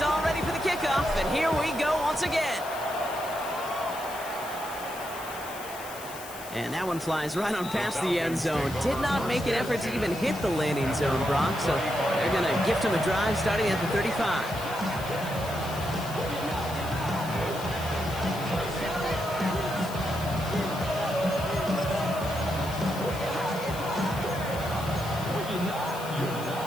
all ready for the kickoff, and here we go once again. And that one flies right on past the end zone. Did not make an effort to even hit the landing zone, Brock, so they're going to gift him a drive starting at the 35.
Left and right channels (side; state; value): left; noise; hiss, 14 dB below the sound